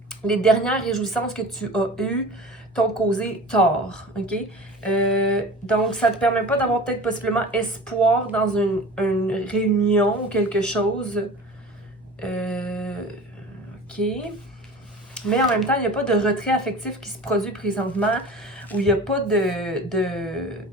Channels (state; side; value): normal; both; correlation 0.38